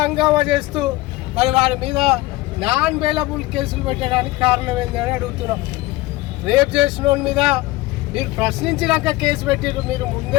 హంగామా చేస్తూ మరి వారి మీద నాన్ బెయిలబుల్ కేసులు పెట్టడానికి కారణం ఏందని అడుగుతున్నాం. రేప్ చేసిన వాళ్ళ మీద మీరు ప్రశ్నించినాక కేసు పెట్టిరు, మీరు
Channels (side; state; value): right; quieter; 19.1 dB